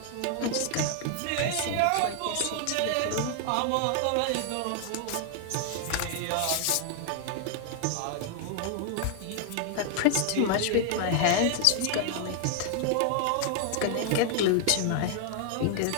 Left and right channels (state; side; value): different; both; correlation 0.00